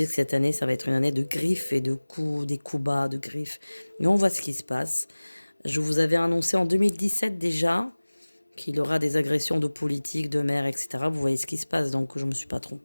cette année ça va être une année de griffes et de coups, des coups bas, de griffes. Mais on voit ce qui se passe. Je vous avais annoncé en 2017 déjà qu'il aura des agressions de politiques, de maires, etc. Vous voyez ce qui se passe, donc je ne me suis pas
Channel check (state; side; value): inverted; both; correlation -1.00